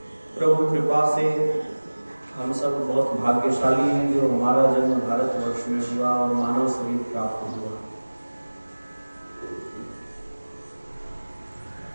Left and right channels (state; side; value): inverted; both; correlation -1.00